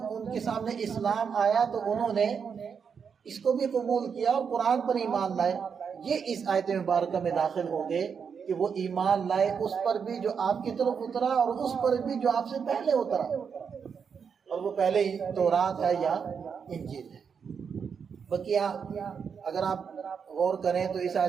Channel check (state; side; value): quieter; left; 6.5 dB